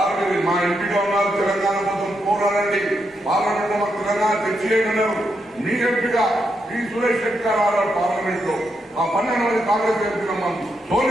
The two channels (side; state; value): both; normal; correlation 0.82